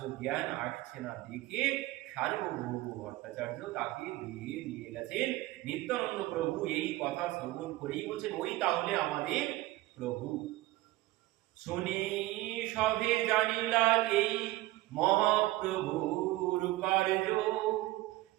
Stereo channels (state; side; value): quieter; left; 18.1 dB